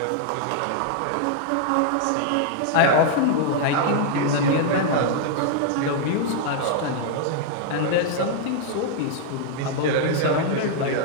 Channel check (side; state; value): both; different; correlation 0.00